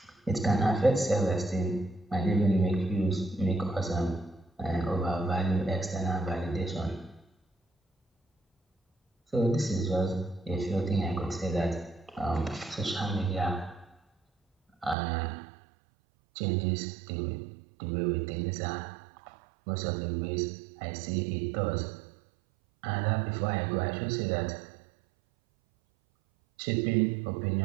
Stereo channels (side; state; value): left; drops out; at 15.0 s